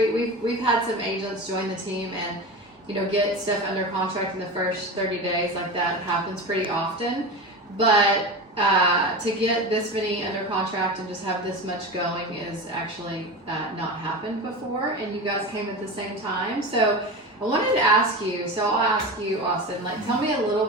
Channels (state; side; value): normal; both; correlation 0.26